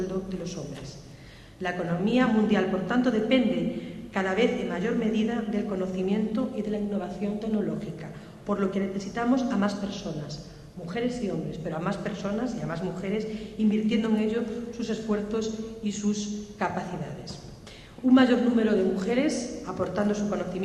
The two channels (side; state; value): both; identical; correlation 1.00